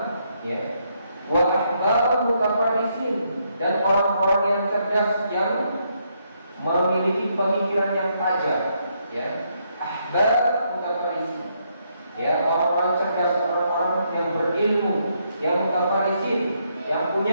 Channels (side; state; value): both; inverted; correlation -0.75